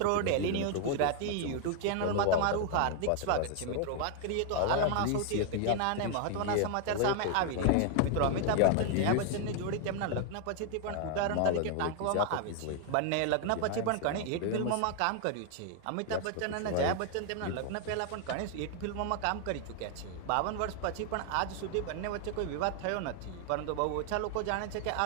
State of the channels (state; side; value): different; both; correlation 0.00